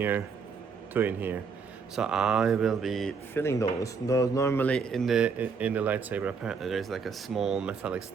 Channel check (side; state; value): left; quieter; 5.5 dB